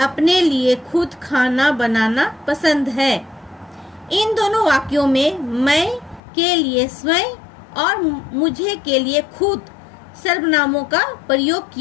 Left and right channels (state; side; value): drops out; right; at 6.2 s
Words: अपने लिए खुद खाना बनाना पसंद है। इन दोनों वाक्यों में मैं के लिए स्वयं और मुझे के लिए खुद सर्वनामों का प्रयोग